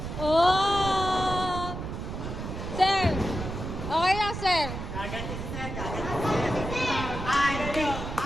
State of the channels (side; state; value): right; noise; rumble, 6 dB below the sound